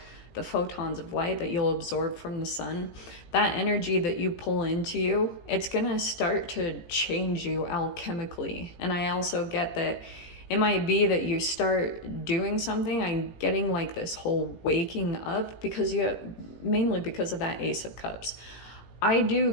the photons of light that you'll absorb from the Sun? That energy that you pull into you, it's gonna start to change you alchemically. And I also get that it might be that you start doing something. I'm getting like this whole waking up because mainly because of that Ace of Cups. I do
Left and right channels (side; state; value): right; late; 18 ms